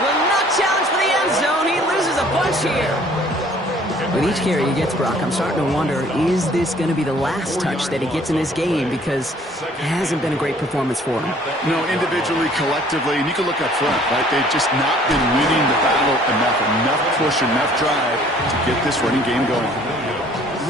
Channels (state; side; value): normal; both; correlation 0.56